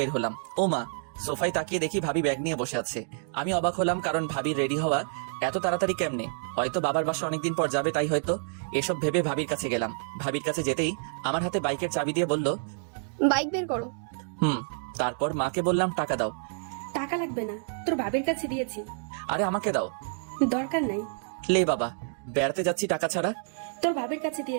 হলাম। ও মা, সোফায় তাকিয়ে দেখি ভাবি ব্যাগ নিয়ে বসে আছে। আমি অবাক হলাম, কারণ ভাবির রেডি হওয়া এত তাড়াতাড়ি কেমনে? হয়তো বাবার বাসা অনেকদিন পর যাবে, তাই হয়তো। এসব ভেবে ভাবির কাছে গেলাম। ভাবির কাছে যেতেই আমার হাতে বাইকের চাবি দিয়ে বলল, বাইক বের করো। তারপর মাকে বললাম, টাকা দাও। টাকা লাগবে না, তোর বাবার কাছে দিয়েছি। আরে আমাকে দাও। দরকার নাই, লে বাবা, বেড়াতে যাচ্ছি টাকা ছাড়া। তোর বাবার কাছে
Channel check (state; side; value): silent; left; digital silence